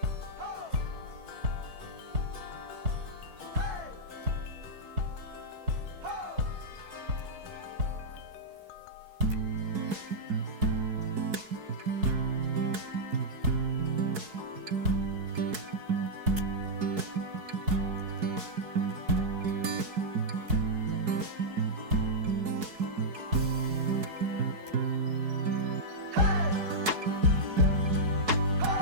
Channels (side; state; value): left; late; 4.6 ms